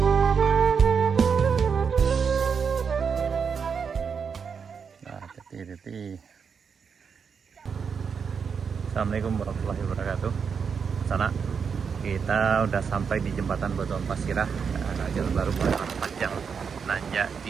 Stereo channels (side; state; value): left; quieter; 6.2 dB